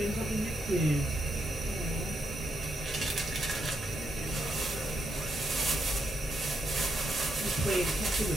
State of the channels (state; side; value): normal; both; correlation 0.80